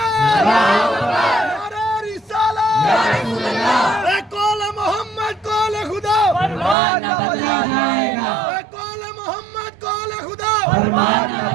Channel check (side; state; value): left; drops out; at 6.8 s